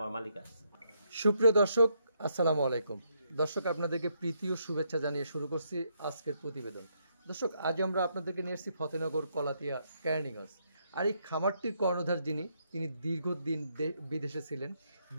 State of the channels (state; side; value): inverted; both; correlation -0.76